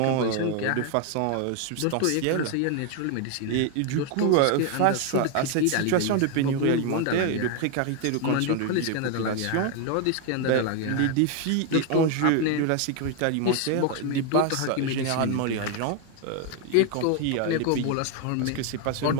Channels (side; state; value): both; different; correlation 0.01